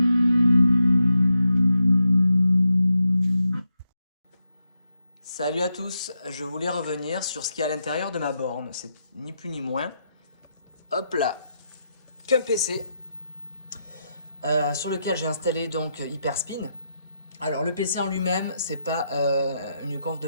à tous, je voulais revenir sur ce qu'il y a à l'intérieur de ma borne. C'est ni plus ni moins, hop là, qu'un PC sur lequel j'ai installé donc Hyperspin. Alors le PC en lui-même, c'est pas une conf de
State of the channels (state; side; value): inverted; both; correlation -0.84